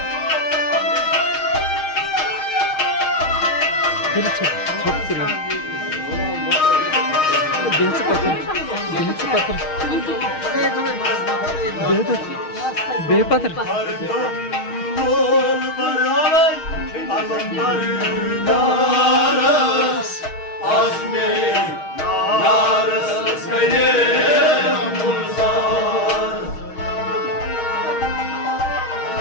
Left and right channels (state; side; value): late; right; 6.4 ms